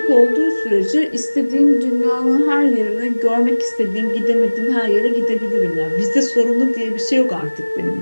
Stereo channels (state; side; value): inverted; both; correlation -1.00